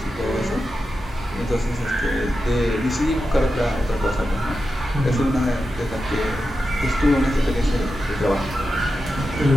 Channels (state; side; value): normal; both; correlation 0.90